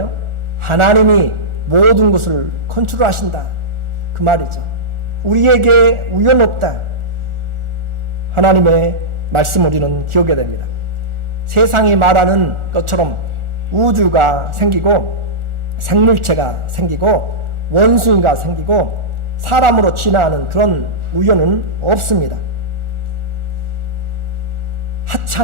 하나님이 모든 것을 컨트롤하신다, 그 말이죠. 우리에게 우연 없다. 하나님의 말씀 우리는 기억해야 됩니다. 세상이 말하는 것처럼 우주가 생기고 생물체가 생기고 원숭이가 생기고 사람으로 진화하는 그런 우연은 없습니다.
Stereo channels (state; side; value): late; left; 1.4 ms